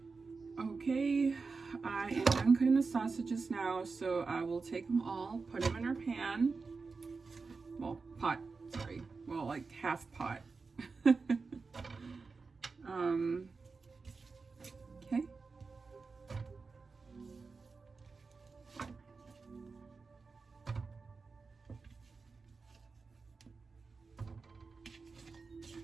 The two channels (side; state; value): left; quieter; 4.4 dB